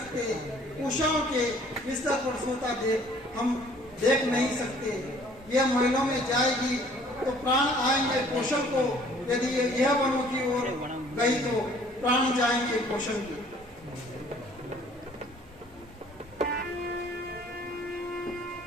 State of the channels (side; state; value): both; normal; correlation 0.55